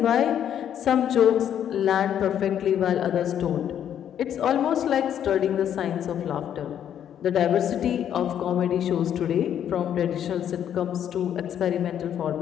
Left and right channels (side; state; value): right; quieter; 9.7 dB